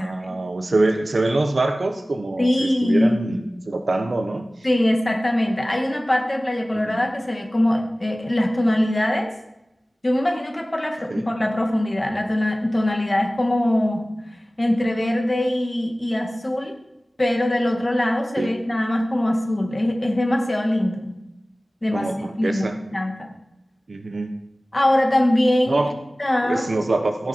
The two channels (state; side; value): normal; both; correlation 0.97